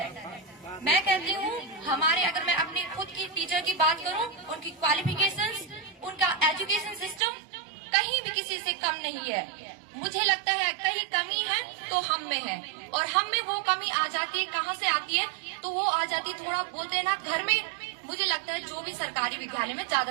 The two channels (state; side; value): drops out; left; at 7.2 s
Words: मैं कहती हूँ हमारे, अगर मैं अपनी खुद की टीचर की बात करूँ, उनकी क्वालिफिकेशंस, उनका एजुकेशन सिस्टम कहीं भी किसी से कम नहीं है। मुझे लगता है कहीं कमी है तो हम में है, और हम में वो कमी आ जाती है, कहाँ से आती है? तो वो आ जाती है, थोड़ा बोलते हैं ना, घर में। मुझे लगता है जो भी सरकारी विद्यालय में